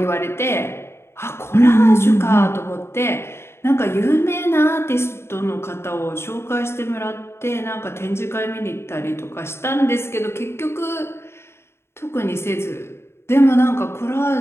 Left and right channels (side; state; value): right; late; 0.12 ms